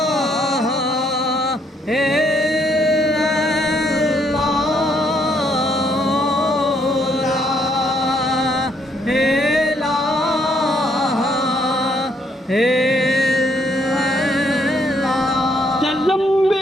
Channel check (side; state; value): both; normal; correlation 0.70